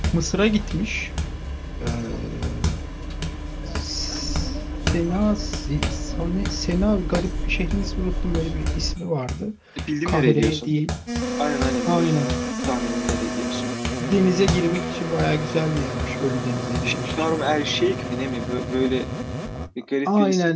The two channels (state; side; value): identical; both; correlation 1.00